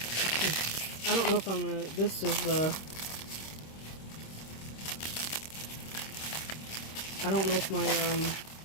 I don't know if I'm gonna. This is the. I don't know if my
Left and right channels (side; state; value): right; late; 26 ms